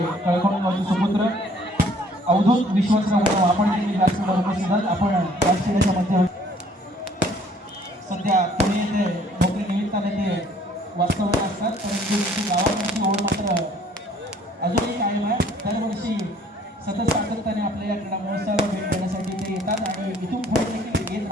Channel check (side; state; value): both; normal; correlation 0.59